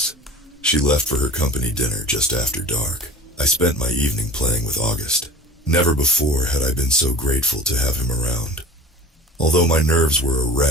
she left for her company dinner just after dark. I spent my evening playing with August. Never before had I been so grateful to have him around. Although my nerves were a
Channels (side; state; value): both; normal; correlation 0.39